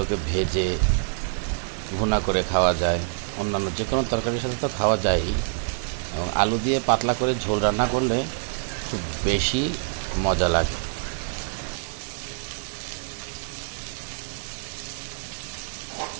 ভেজে ভুনা করে খাওয়া যায়, অন্যান্য যে কোনো তরকারির সাথে তো খাওয়া যায়ই, এবং আলু দিয়ে পাতলা করে ঝোল রান্না করলে খুব বেশি মজা লাগে।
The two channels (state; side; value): silent; left; digital silence